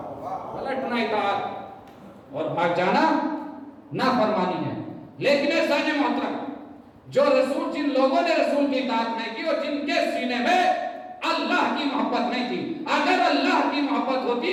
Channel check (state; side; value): identical; both; correlation 1.00